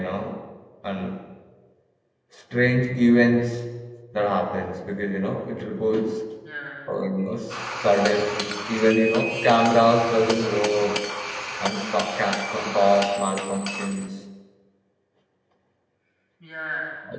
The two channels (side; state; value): both; identical; correlation 1.00